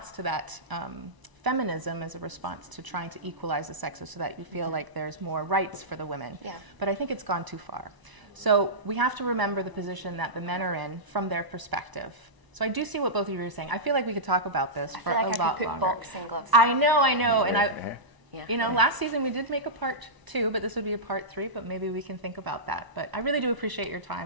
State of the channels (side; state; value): left; late; 1.0 ms